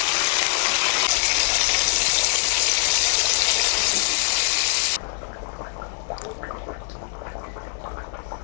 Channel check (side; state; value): right; silent; digital silence